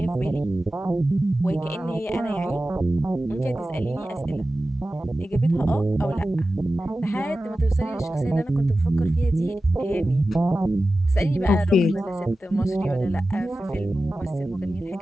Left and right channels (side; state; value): both; normal; correlation 0.95